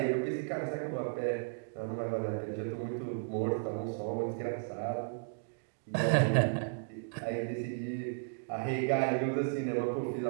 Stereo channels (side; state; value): left; silent; digital silence